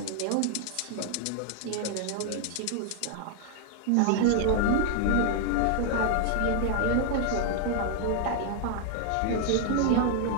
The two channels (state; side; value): different; both; correlation 0.00